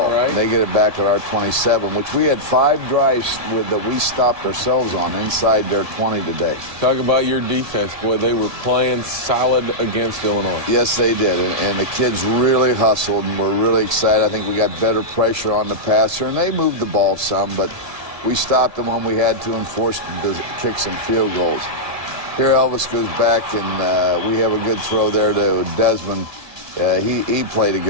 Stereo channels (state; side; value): late; left; 1.7 ms